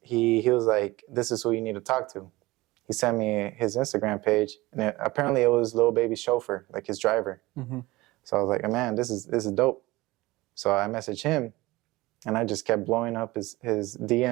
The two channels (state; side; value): quieter; left; 20.1 dB